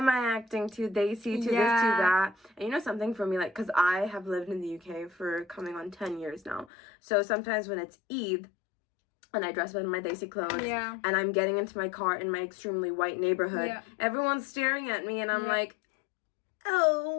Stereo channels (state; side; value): drops out; right; at 6.7 s